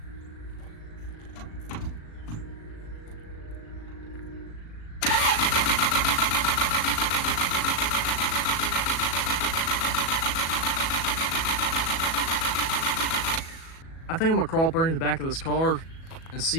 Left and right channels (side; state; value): right; late; 37 ms